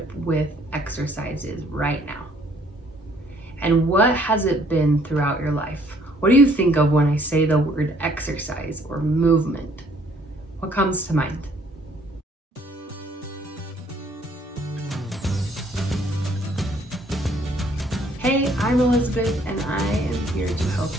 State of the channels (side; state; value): both; normal; correlation 0.62